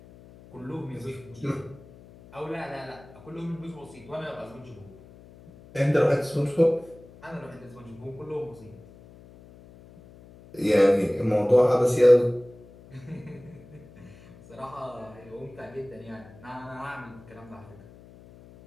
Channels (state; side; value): noise; left; hum, 21 dB below the sound